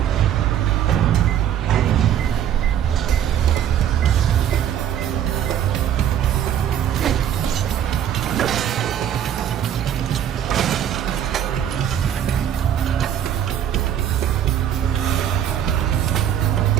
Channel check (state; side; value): quieter; left; 10.0 dB